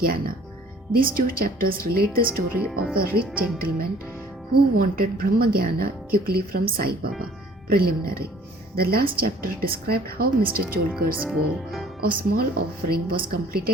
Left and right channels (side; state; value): both; normal; correlation 0.54